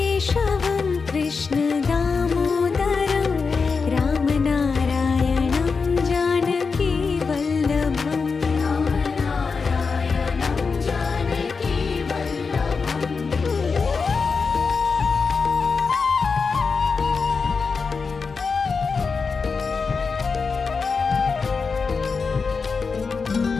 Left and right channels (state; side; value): quieter; right; 4.9 dB